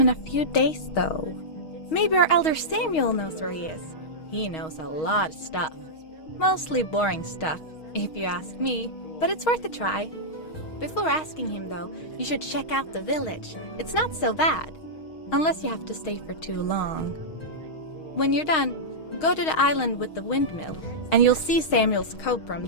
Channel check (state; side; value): late; right; 6.4 ms